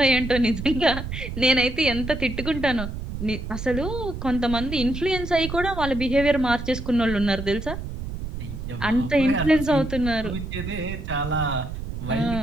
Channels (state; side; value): noise; right; rumble, 7 dB below the sound